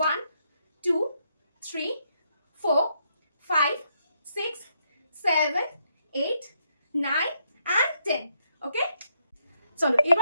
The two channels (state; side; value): inverted; both; correlation -0.76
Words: 2 3 4 5 6 7 8 9 and 10। ওকে, চলো